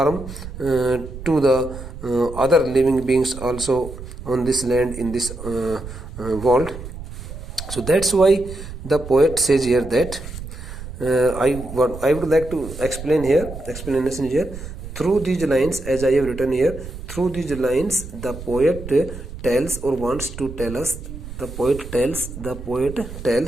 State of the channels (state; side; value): noise; right; rumble, 11 dB below the sound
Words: to the other living beings also on this land, in this world. So that's why the poet says here that I would like to explanation here through these lines, as I have written here. Through these lines, the poet tells or wants to tell us. The poet tells